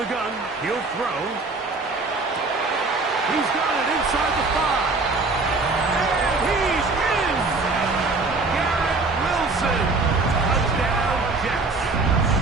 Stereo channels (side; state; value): left; quieter; 3.6 dB